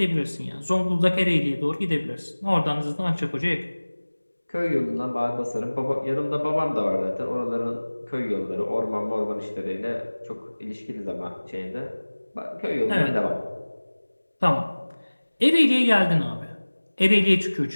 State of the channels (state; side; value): inverted; both; correlation -1.00